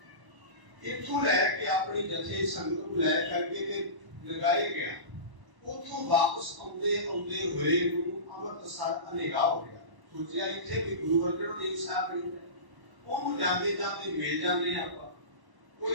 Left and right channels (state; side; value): late; left; 1.1 ms